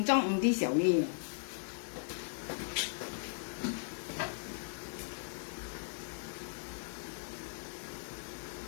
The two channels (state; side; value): silent; right; 53 dB below the other